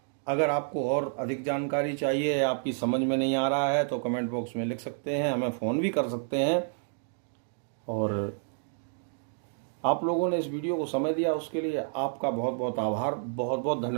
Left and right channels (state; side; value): silent; left; digital silence